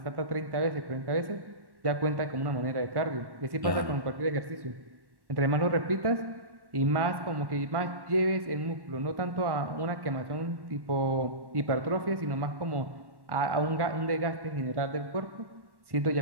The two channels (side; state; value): left; late; 1.1 ms